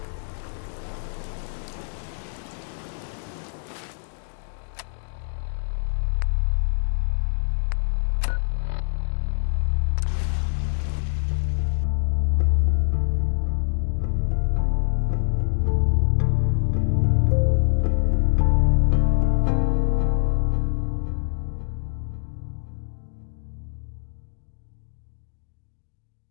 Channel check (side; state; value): right; silent; digital silence